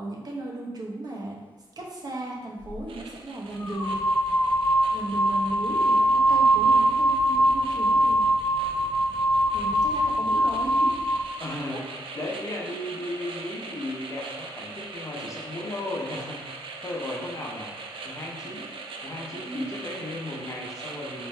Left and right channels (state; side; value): normal; both; correlation 0.78